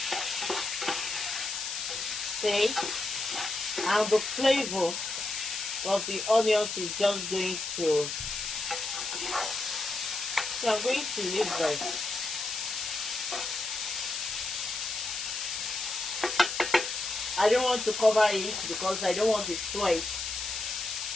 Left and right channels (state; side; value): noise; left; hiss, 4 dB below the sound